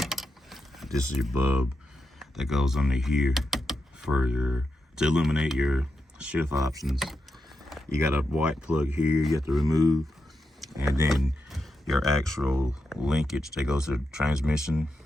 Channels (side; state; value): both; normal; correlation 0.87